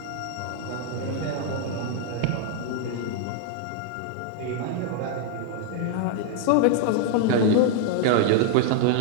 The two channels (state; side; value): different; both; correlation 0.00